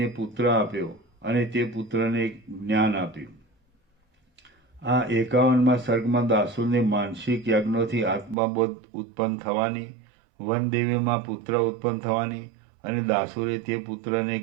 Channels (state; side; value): drops out; left; at 8.3 s